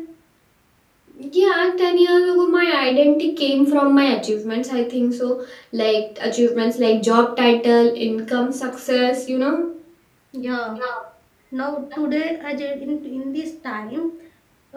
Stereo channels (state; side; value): identical; both; correlation 1.00